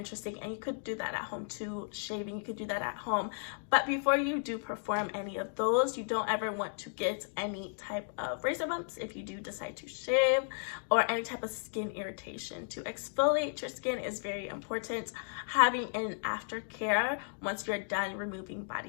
and you could do that at home too. Shaving, you could do that at home, but before you do perform any of those, you don't ever want to get any type of razor bumps if you do decide to shave, or any type of skin irritation. To exfoliate your skin is very important. Having an aftercare once you're done removing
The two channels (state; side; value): silent; right; digital silence